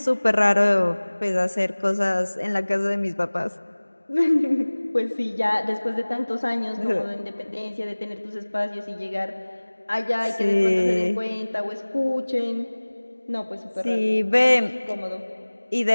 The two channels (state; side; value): inverted; both; correlation -1.00